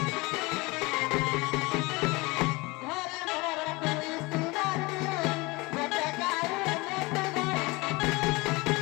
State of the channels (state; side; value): quieter; right; 23.7 dB